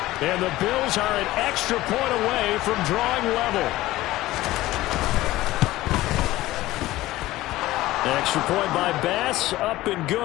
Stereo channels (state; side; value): quieter; right; 17.0 dB